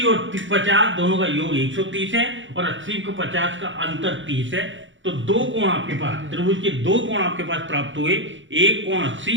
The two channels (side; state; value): left; late; 0.55 ms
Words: और 50 दोनों का योग 130 है और 80 को 50 का अंतर 30 है। तो दो कोण आपके पास, त्रिभुज के दो कोण आपके पास प्राप्त हुए, एक कोण